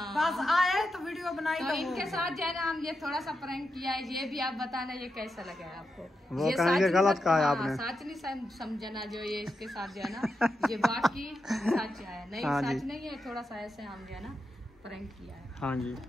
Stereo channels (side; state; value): both; normal; correlation 0.87